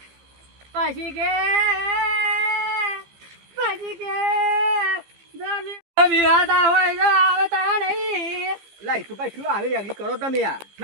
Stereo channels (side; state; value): left; late; 15 ms